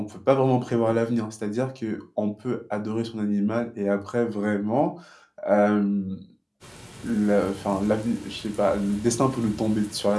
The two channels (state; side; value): identical; both; correlation 1.00